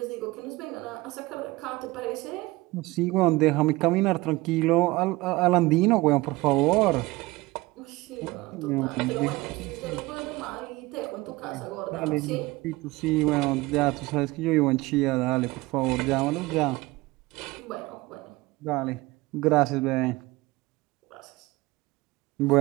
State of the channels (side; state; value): left; quieter; 21.0 dB